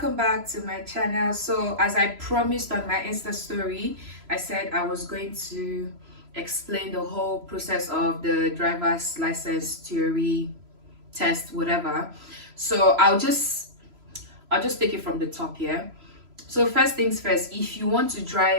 back to my channel. So as I promised on my Insta story, I said I was going to explain the whole process of the driver's license theory test, whatever. So I'll just take it from the top here. So first things first, if you want to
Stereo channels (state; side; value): late; left; 3.0 ms